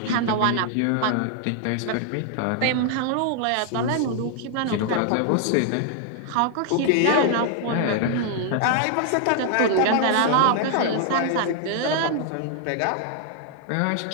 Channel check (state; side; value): different; both; correlation 0.00